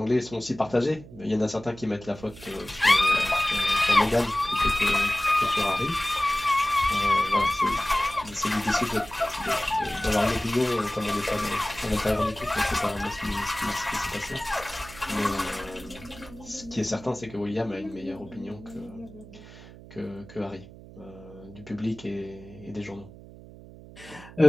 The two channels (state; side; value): noise; right; hum, 18 dB below the sound